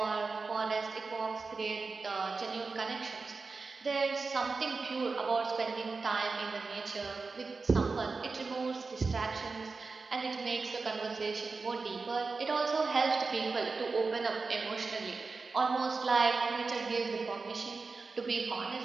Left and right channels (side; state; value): left; quieter; 4.2 dB